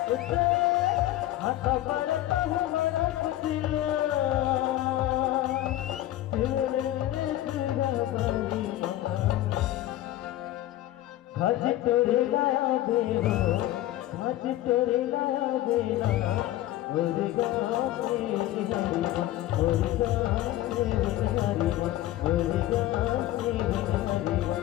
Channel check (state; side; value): quieter; right; 14.4 dB